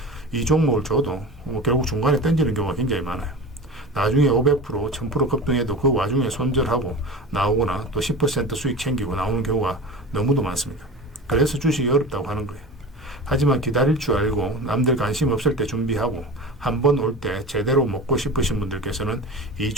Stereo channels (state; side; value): normal; both; correlation 0.32